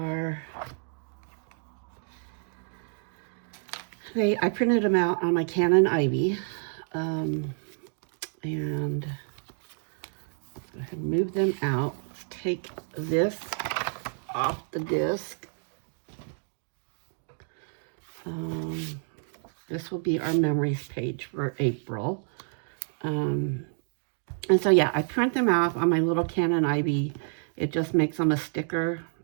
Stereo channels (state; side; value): silent; left; 59 dB below the other